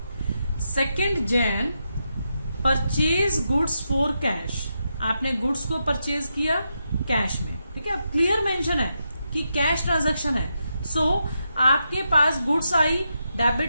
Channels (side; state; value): both; inverted; correlation -0.85